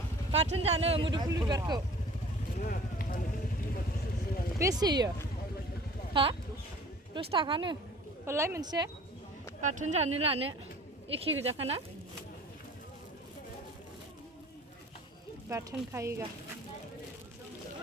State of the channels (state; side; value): normal; both; correlation 0.47